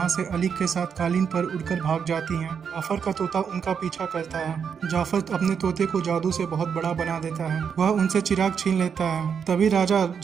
से अली के साथ कालीन पर उड़कर भाग जाती हैं। जाफर का तोता उनका पीछा करता है। जाफर अपने तोते को जादू से बहुत बड़ा बना देता है। वह उनसे चिराग छीन लेता है। तभी राजा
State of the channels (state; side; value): quieter; left; 6.9 dB